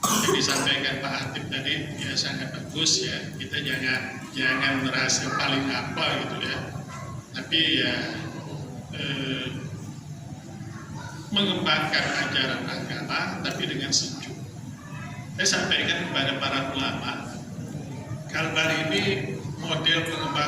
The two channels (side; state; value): both; identical; correlation 1.00